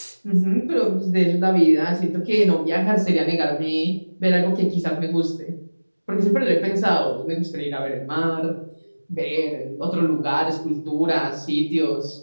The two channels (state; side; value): inverted; both; correlation -1.00